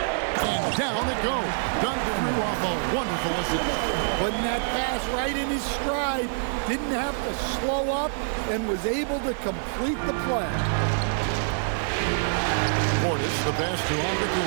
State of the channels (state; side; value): silent; left; 58 dB below the other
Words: And down it goes. Dunk through off a wonderful assist. Putting that pass right in his stride. Didn't have to slow up and was able to complete the play. Portis, the pass to